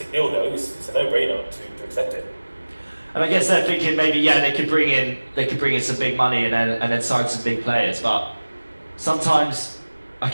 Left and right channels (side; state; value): both; inverted; correlation -1.00